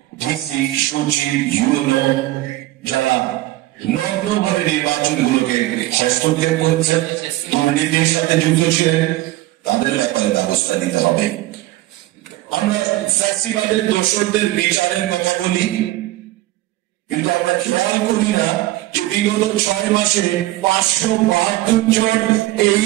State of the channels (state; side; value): quieter; left; 17.1 dB